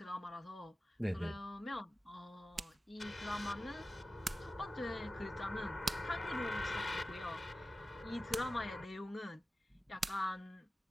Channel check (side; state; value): both; normal; correlation 0.95